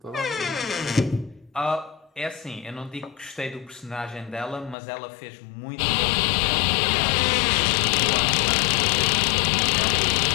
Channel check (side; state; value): right; drops out; at 4.8 s